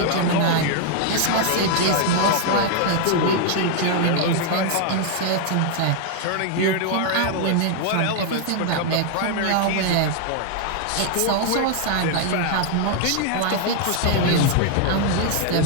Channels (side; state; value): both; different; correlation 0.00